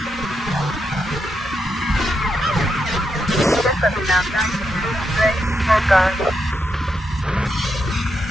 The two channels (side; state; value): both; normal; correlation 0.83